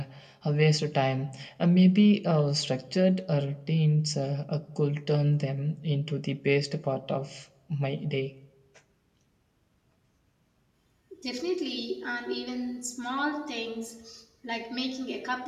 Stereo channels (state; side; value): identical; both; correlation 1.00